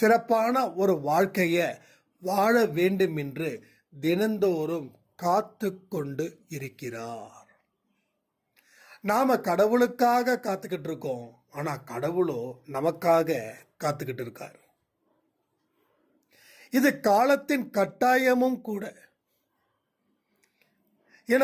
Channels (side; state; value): both; identical; correlation 1.00